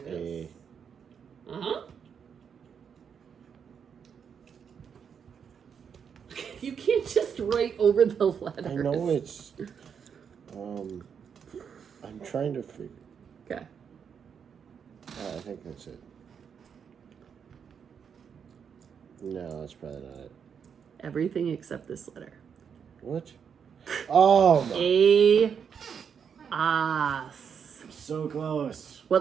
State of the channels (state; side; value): quieter; left; 7.1 dB